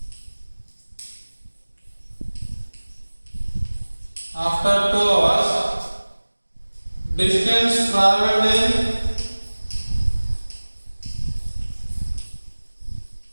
after 2 hours, distance traveled in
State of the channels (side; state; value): both; inverted; correlation -1.00